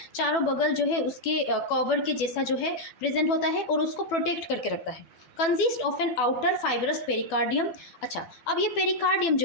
चारों बगल जो है उसके कवर के जैसा जो है प्रेजेंट होता है और उसको प्रोटेक्ट करके रखता है। Consist of an outer fibrous pericardium. अच्छा, अब ये पेरिकार्डियम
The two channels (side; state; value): right; late; 12 ms